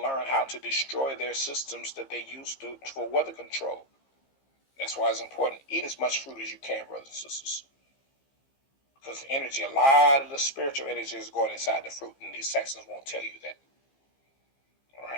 learn how to destroy their systems that they use for weather control. That's why it's important. Eat as much fruit as you can, brothers and sisters. Because the energy, a lot of the spiritual energy is going inside the fruit. And these Saxons won't tell you that. All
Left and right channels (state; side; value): late; right; 15 ms